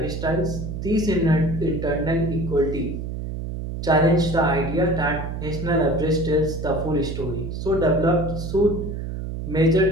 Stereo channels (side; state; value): right; noise; hum, 6 dB below the sound